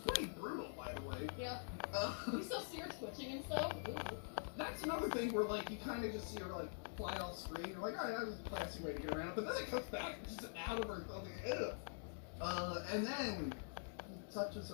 brutal, by the way. Yeah. You still see her twitching and stuff? Ooh. That's another thing where, like, you kind of just see her, like, fly off screen. You're like, alright, that was a classy way to get around. But then it comes back and just out of her and something. And then he touches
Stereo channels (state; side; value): silent; right; digital silence